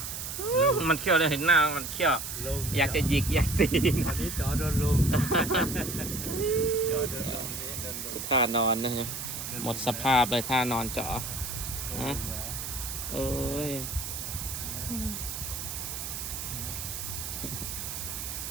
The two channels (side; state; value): right; noise; hiss, 6 dB below the sound